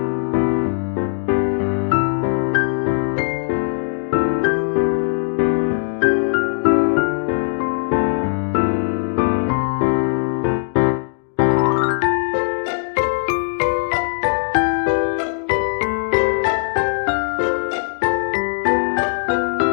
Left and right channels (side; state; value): right; silent; digital silence